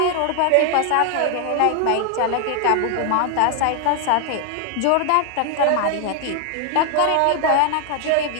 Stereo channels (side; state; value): both; different; correlation 0.00